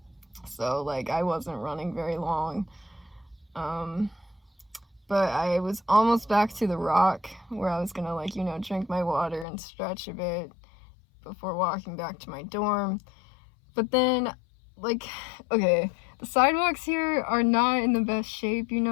So like I wasn't running very long. But I was almost back to the Rock where I was gonna like, drink my water and stretch a bit before walking back to my dorm. But then, like, okay, the sidewalks here are not in the best shape,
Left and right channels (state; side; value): drops out; right; at 9.5 s